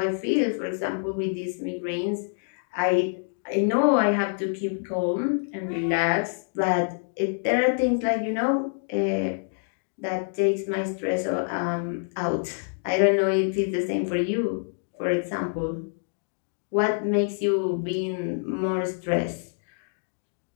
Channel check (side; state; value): right; silent; digital silence